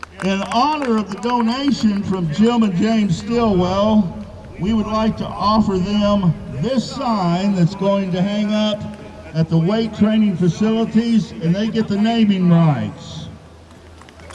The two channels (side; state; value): both; identical; correlation 1.00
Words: In honor of the donation from Jim and Jane Stillwell, we would like to offer them this sign that's going to hang up at the weight training facilities, and they get the naming rights.